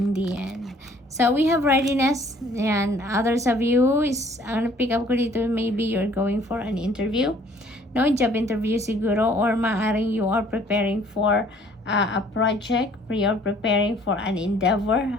the end. So, we have readiness. Yan. Others of you is, ang pick up ko dito, maybe you're going for an interview. No, job interview siguro or maaring you are preparing for a project, you're preparing for an endeavor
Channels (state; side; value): normal; both; correlation 0.57